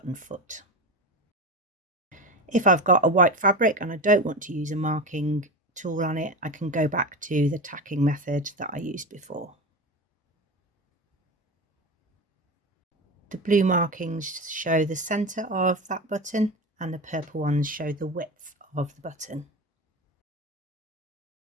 foot. If I've got a white fabric and I don't want to use a marking tool on it, I can go back to the tacking method that I used before. The blue markings show the centre of that button and the purple ones show the width of the button.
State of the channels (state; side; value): normal; both; correlation 0.23